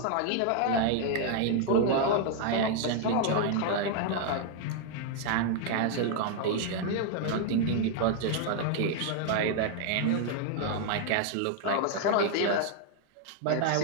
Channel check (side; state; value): both; different; correlation 0.00